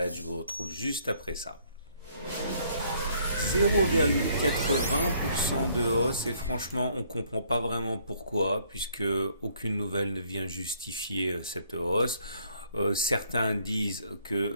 Je vous retrouve juste après ça. 0,80% de hausse et franchement on comprend pas vraiment pourquoi puisque aucune nouvelle ne vient justifier cette hausse. Certains disent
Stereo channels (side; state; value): both; inverted; correlation -0.65